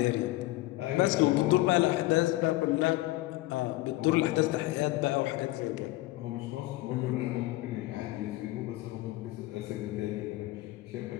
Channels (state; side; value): quieter; right; 18.3 dB